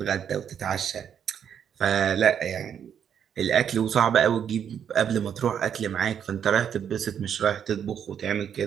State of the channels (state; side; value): quieter; left; 8.4 dB